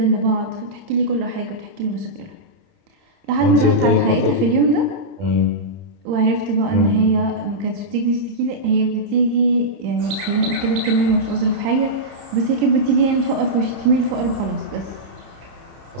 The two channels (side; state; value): left; late; 30 ms